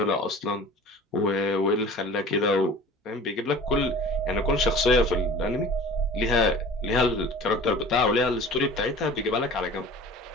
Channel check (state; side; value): normal; both; correlation 0.42